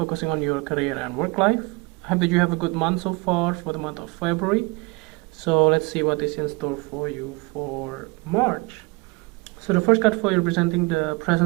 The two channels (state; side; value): quieter; left; 26.5 dB